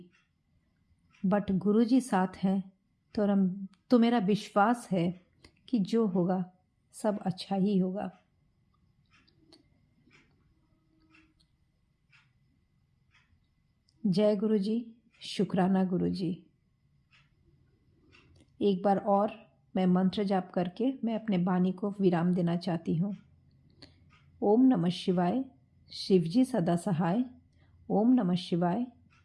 बट गुरुजी साथ हैं तो मेरा विश्वास है कि जो होगा सब अच्छा ही होगा। जय गुरुजी, शुक्राना गुरुजी। एक बार और मैं मंत्र जाप करके मैं अपने वाणी को विराम देना चाहती हूँ। ओम नमः शिवाय, शिवजी सदा सहाय। ओम नमः शिवाय,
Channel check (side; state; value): both; identical; correlation 1.00